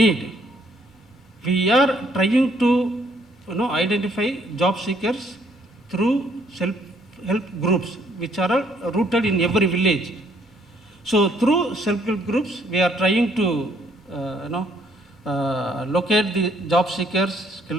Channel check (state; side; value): normal; both; correlation 0.67